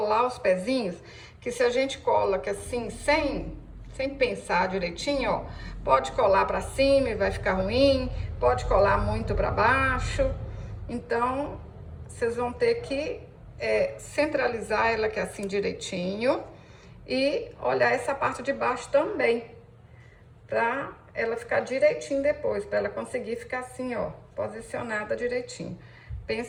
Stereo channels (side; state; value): both; identical; correlation 1.00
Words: os pezinhos, que se a gente cola aqui assim, sem pensar direitinho, ó, pode colar para cima e vai ficar ruim, pode colar muito para baixo. Então, vocês vão ter que centralizar ela aqui assim direitinho e olhar essa parte de baixo também, pra ela ficar direitinho depois, pra ela conseguir ficar assim, ó, posicionada direitinho.